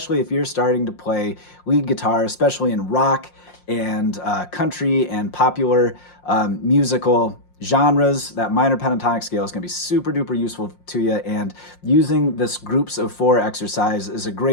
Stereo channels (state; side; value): late; right; 5.6 ms